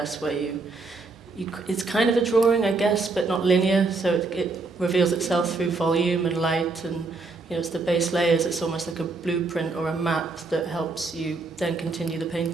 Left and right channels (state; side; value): quieter; left; 3.7 dB